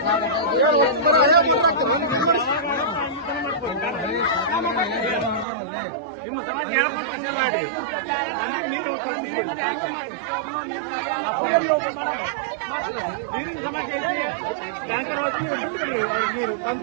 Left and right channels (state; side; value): drops out; left; at 5.5 s